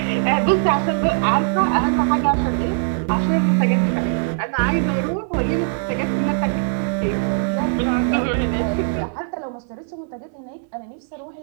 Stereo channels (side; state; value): left; silent; 61 dB below the other